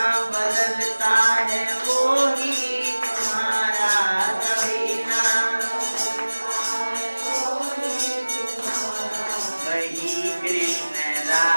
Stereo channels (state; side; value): inverted; both; correlation -1.00